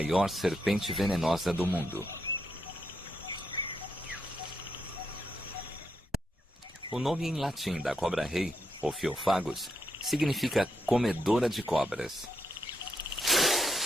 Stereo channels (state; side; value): normal; both; correlation 0.81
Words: serpente venenosa do mundo. O nome em latim da cobra-rei, Ophiophagus, significa comedora de cobras.